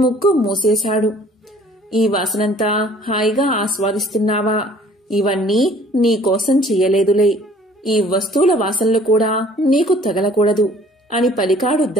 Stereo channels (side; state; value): both; normal; correlation 0.54